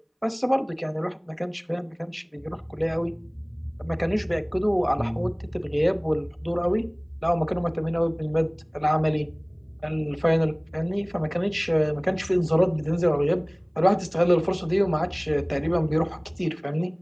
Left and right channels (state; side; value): identical; both; correlation 1.00